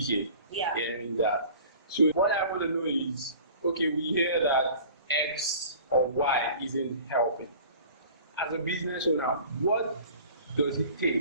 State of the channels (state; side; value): inverted; both; correlation -0.45